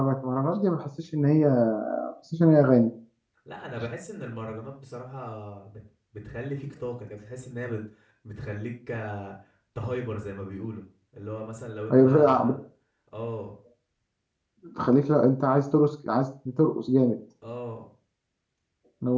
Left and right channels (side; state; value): both; identical; correlation 1.00